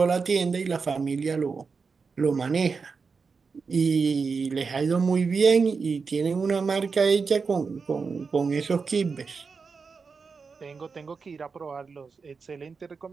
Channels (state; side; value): quieter; left; 5.0 dB